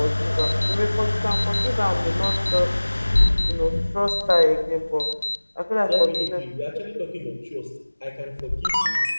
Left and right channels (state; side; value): inverted; both; correlation -1.00